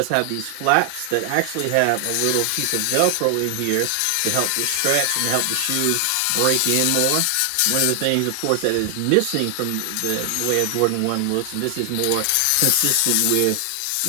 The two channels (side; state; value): both; different; correlation 0.00